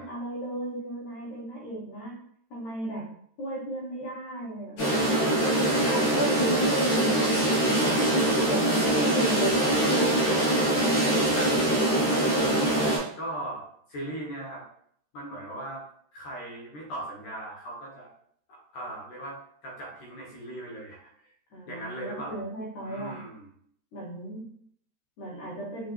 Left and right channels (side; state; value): right; late; 13 ms